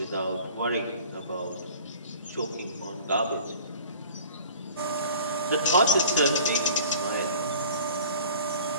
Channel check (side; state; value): both; inverted; correlation -0.45